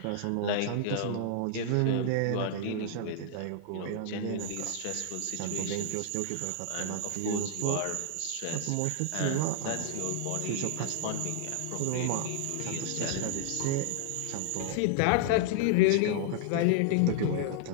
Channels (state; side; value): different; both; correlation -0.01